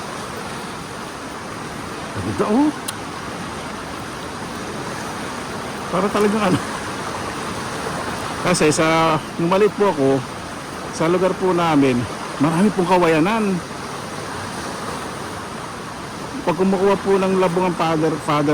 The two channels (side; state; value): both; identical; correlation 1.00